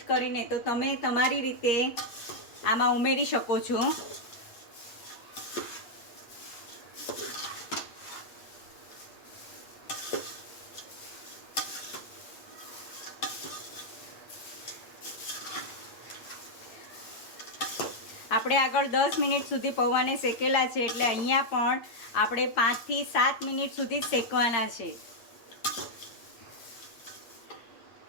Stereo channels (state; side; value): late; right; 8.4 ms